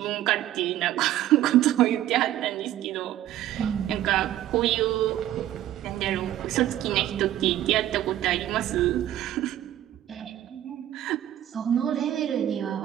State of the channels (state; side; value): quieter; left; 12.7 dB